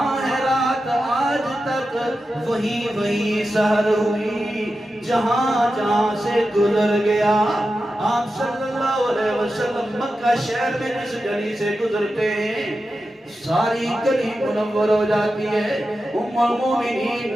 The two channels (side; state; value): both; normal; correlation 0.91